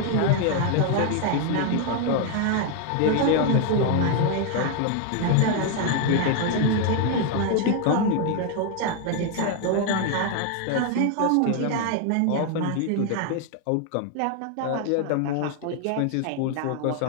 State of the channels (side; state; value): both; different; correlation 0.01